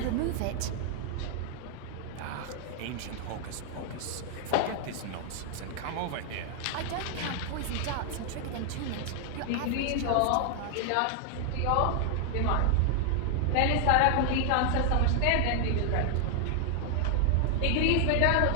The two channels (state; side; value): different; both; correlation 0.00